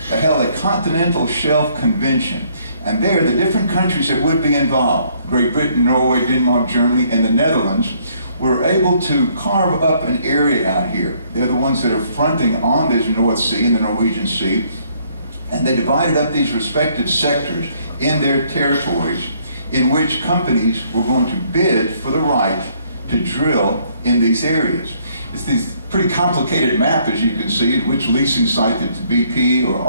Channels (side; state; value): both; inverted; correlation -0.66